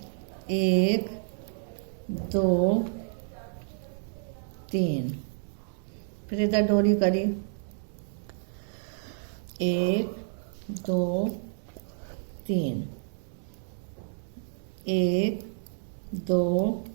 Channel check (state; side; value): silent; left; 58 dB below the other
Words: 1 2 3, फिर इधर डोरी करी, 1 2 3, 1 2